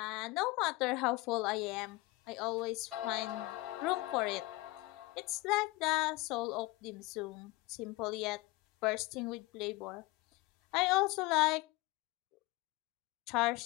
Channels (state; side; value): quieter; right; 21.3 dB